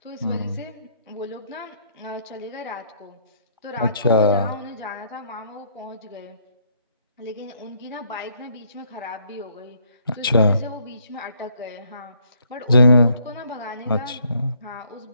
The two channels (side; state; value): both; inverted; correlation -0.68